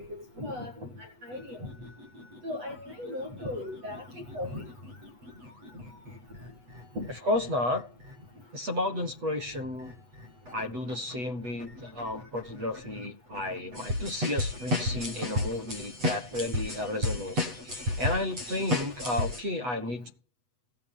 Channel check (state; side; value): late; left; 8.1 ms